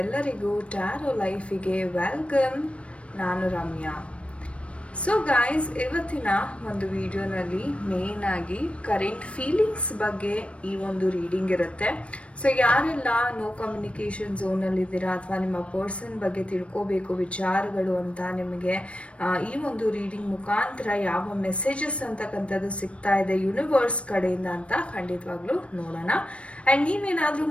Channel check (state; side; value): late; right; 0.061 ms